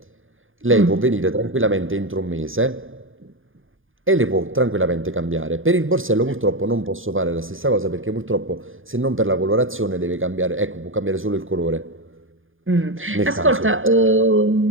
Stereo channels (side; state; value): left; late; 0.59 ms